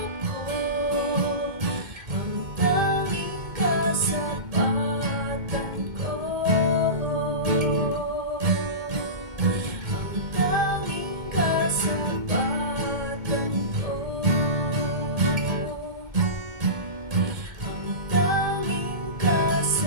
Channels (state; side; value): late; left; 2.1 ms